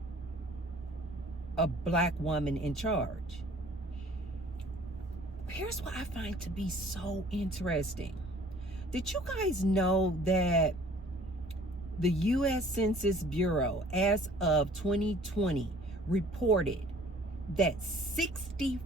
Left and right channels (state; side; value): normal; both; correlation 0.53